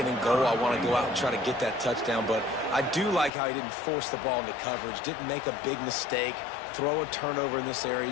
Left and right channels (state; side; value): drops out; right; at 3.3 s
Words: and goal, I want to go out and try to get that touchdown. But I do like how he didn't force the ball into coverage, didn't make a big mistake, throw a turnover in this area.